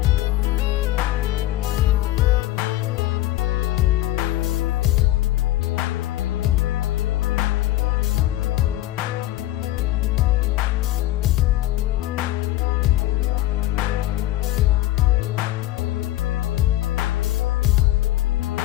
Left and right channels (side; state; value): right; quieter; 15.5 dB